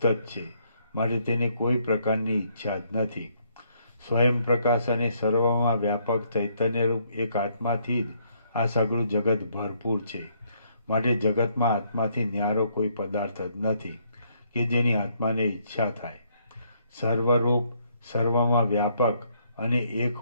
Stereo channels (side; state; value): both; inverted; correlation -0.70